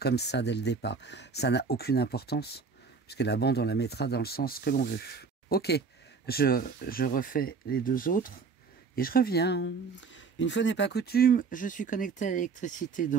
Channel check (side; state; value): left; quieter; 4.9 dB